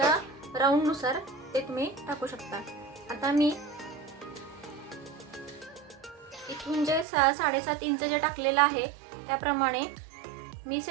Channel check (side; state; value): left; drops out; at 7.1 s